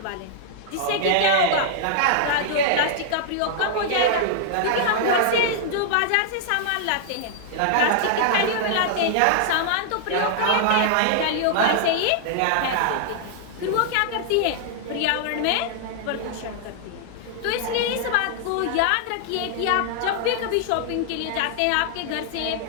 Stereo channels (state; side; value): different; both; correlation -0.01